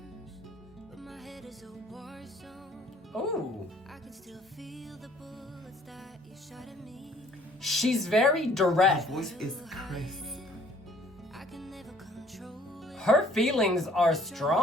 but my head is a war zone. Ooh. I can still feel the bullets that you shot at me. She's very direct. Her voice is crisp. I can never control it. Her feelings are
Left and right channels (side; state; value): both; normal; correlation 0.58